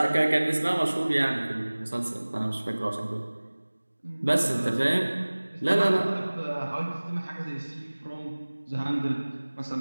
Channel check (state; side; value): inverted; both; correlation -1.00